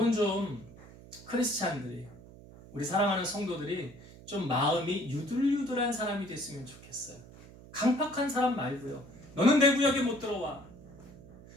좀 크리스찬들이 우리 사랑하는 성도들이 좀 마음이 유들유들한 사람이 됐으면 좋겠어요. 강팍한 사람 말고요. 너는 내 구역에 못 들어와.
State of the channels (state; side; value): noise; right; hum, 19 dB below the sound